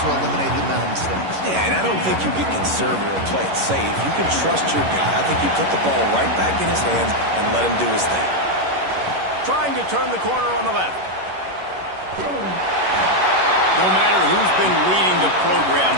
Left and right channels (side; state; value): left; late; 11 ms